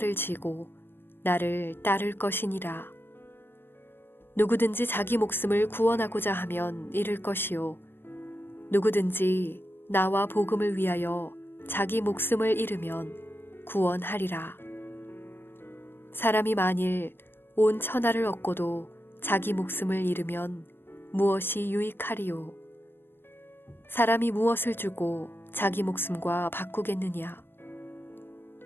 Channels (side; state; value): right; late; 0.10 ms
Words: 지고 나를 따를 것이니라. 누구든지 자기 목숨을 구원하고자 하면 잃을 것이요 누구든지 나와 복음을 위하여 자기 목숨을 잃으면 구원하리라. 사람이 만일 온 천하를 얻고도 자기 목숨을 잃으면 무엇이 유익하리요? 사람이 무엇을 주고 자기 목숨과 바꾸겠느냐?